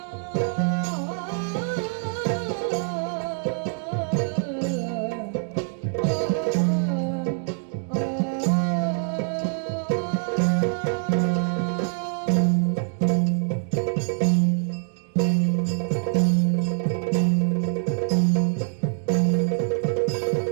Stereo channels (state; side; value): silent; left; 58 dB below the other